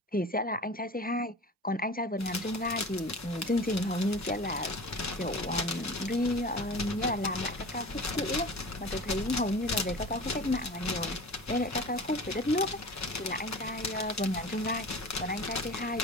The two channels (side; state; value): both; normal; correlation 0.37